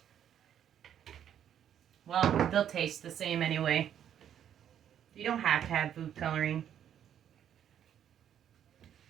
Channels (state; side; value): quieter; left; 9.8 dB